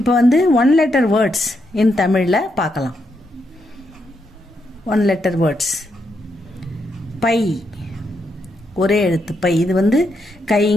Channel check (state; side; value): normal; both; correlation 0.80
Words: வந்து ஒன் லெட்டர் வேர்ட்ஸ் இன் தமிழில் பார்க்கலாம். One letter words. பை, ஒரே எழுத்து பை. இது வந்து கை,